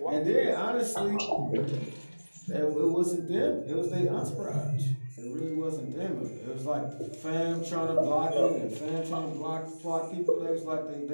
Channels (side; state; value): both; inverted; correlation -1.00